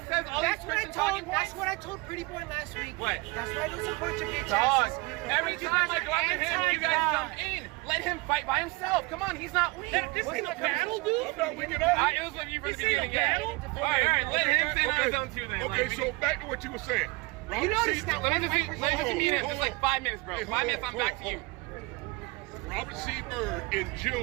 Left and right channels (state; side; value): quieter; left; 25.6 dB